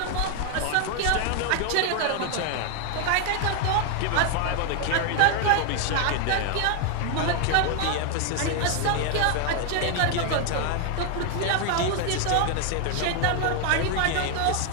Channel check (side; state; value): both; different; correlation 0.00